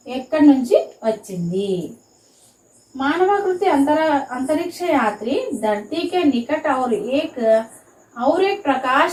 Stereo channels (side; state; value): both; identical; correlation 1.00